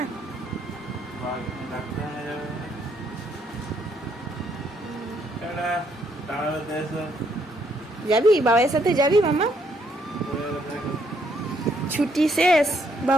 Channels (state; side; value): normal; both; correlation 0.71